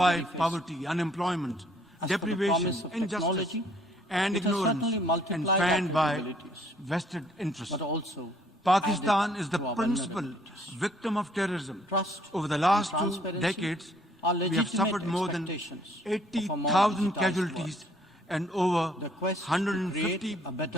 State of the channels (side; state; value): both; normal; correlation 0.63